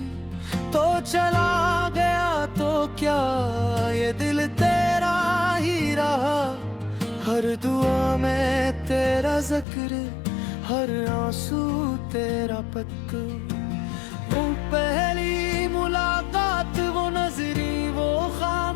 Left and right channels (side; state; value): right; drops out; at 9.7 s